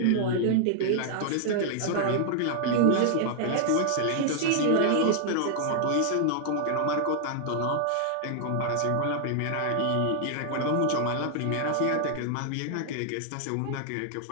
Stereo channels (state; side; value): different; both; correlation 0.00